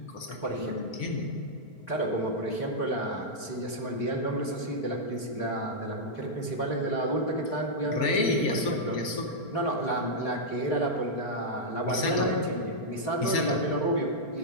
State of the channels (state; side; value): late; right; 5.2 ms